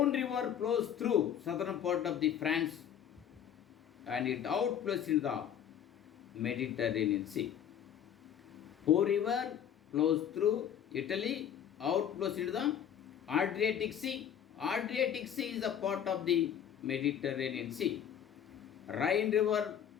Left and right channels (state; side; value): quieter; right; 9.2 dB